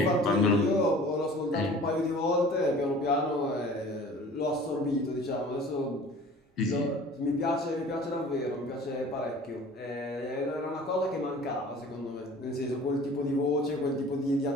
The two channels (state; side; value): normal; both; correlation 0.46